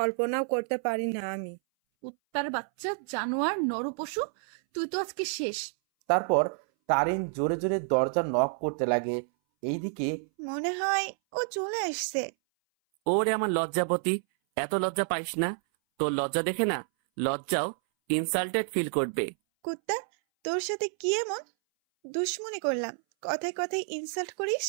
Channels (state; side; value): silent; left; 58 dB below the other